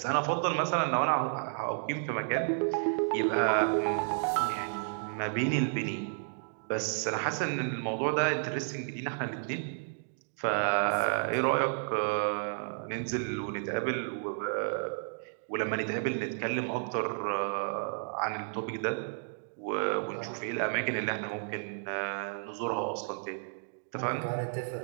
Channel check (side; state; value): left; silent; digital silence